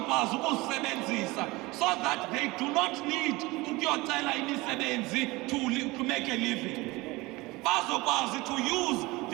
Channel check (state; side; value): quieter; left; 22.1 dB